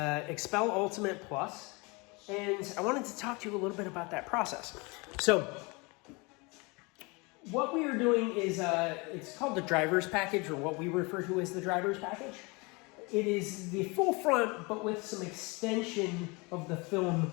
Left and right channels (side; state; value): right; quieter; 27.6 dB